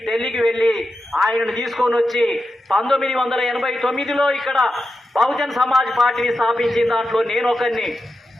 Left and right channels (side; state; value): both; normal; correlation 0.89